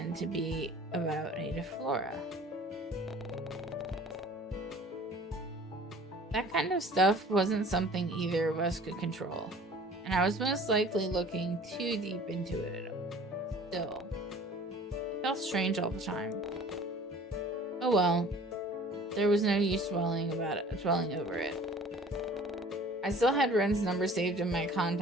to be about native flora. That kind of stuff wasn't something either of us could control, and I was most likely looking too deep into it. Still, it felt strange all the time. Oh well, there was no use dwelling over it. I still had Ren's number saved in my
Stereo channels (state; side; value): normal; both; correlation 0.48